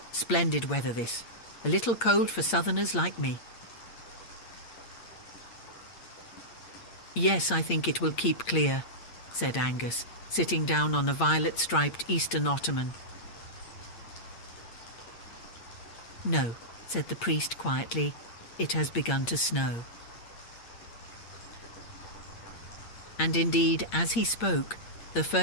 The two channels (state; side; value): late; right; 8.6 ms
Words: Splendid weather this, a little cold for southerners like me." "Yes, I think it will keep clear," said Angus, sitting down on a violet-striped Eastern ottoman. "No," said the priest quietly, "it has begun to snow." And indeed, as he spoke, the